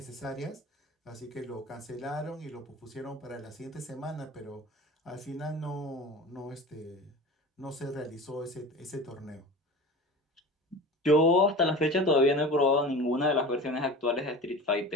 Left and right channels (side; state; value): both; normal; correlation 0.34